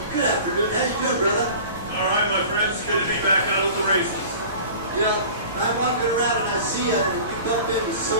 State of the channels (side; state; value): both; inverted; correlation -0.41